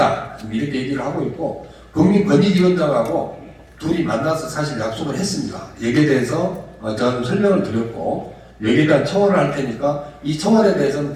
이렇게 얘기를 하고 있고 국민권익위원장하고 둘이 만나서 사실 약속을 했습니다. 여기에 대해서 저는 설명을 드렸고 여기에 대한 청원을 할 테니까 이 청원에 대해서는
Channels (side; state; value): both; identical; correlation 1.00